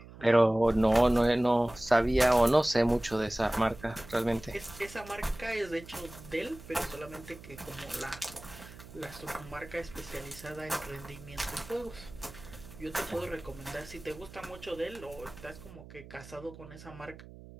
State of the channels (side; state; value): right; noise; hum, 17 dB below the sound